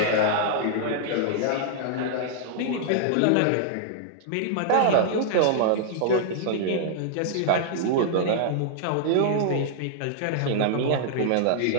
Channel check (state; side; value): different; both; correlation -0.01